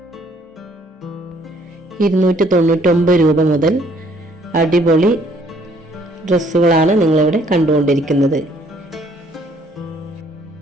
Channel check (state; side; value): normal; both; correlation 0.63